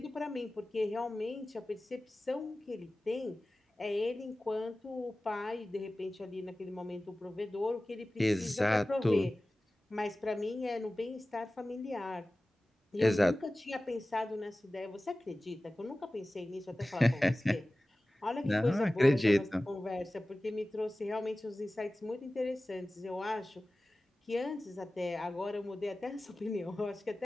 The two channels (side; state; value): both; normal; correlation 0.97